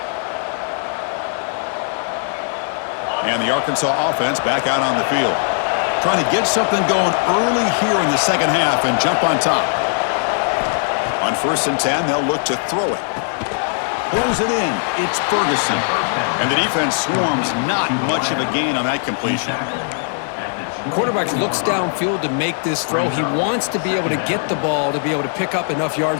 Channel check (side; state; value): right; silent; digital silence